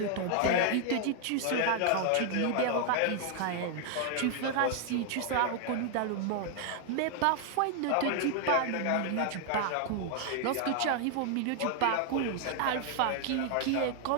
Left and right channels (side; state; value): both; different; correlation 0.00